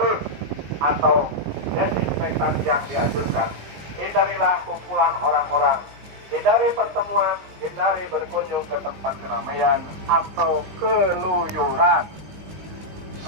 atau desinfektan yang dianjurkan. Hindarilah kumpulan orang-orang. Hindari pertemuan, hindari berkunjung ke tempat keramaian atau keluyuran.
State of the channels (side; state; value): left; late; 20 ms